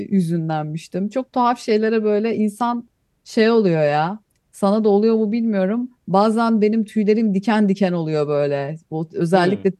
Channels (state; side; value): identical; both; correlation 1.00